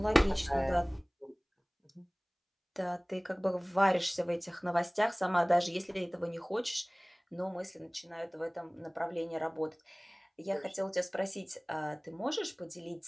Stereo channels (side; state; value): both; identical; correlation 1.00